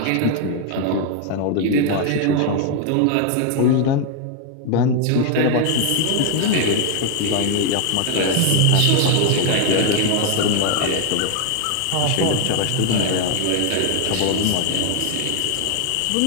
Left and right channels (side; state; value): both; different; correlation 0.00